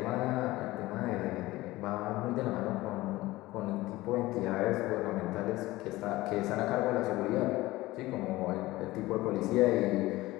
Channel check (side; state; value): right; quieter; 18.6 dB